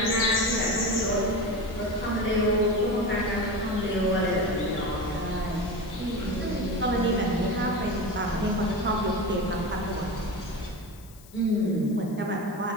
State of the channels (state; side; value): noise; left; hiss, 24 dB below the sound